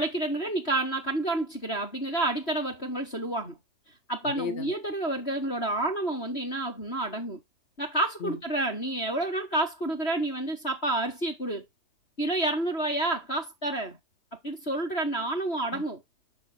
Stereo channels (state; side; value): late; right; 2.9 ms